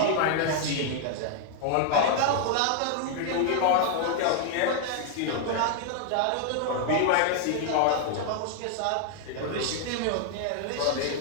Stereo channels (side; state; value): both; different; correlation 0.00